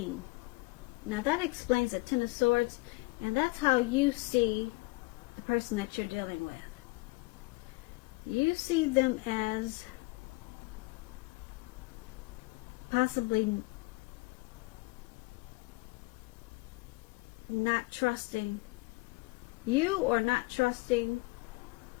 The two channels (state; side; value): quieter; right; 24.4 dB